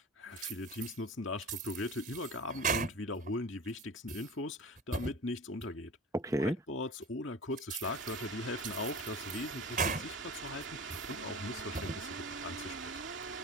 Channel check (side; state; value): both; normal; correlation 0.36